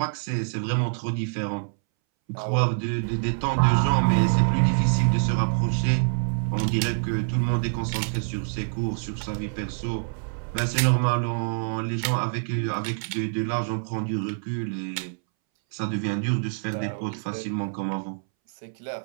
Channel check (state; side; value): silent; left; 61 dB below the other